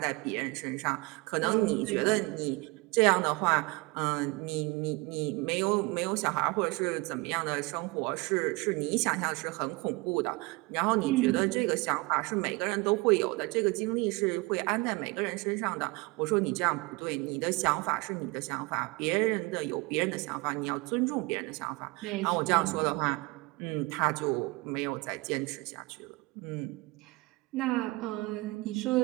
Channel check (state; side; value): quieter; left; 24.7 dB